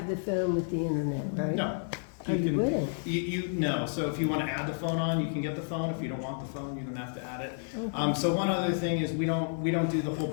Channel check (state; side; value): silent; right; digital silence